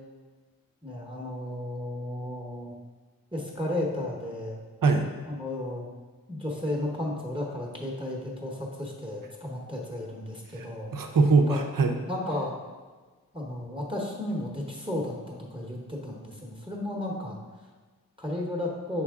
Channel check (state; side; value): normal; both; correlation 0.64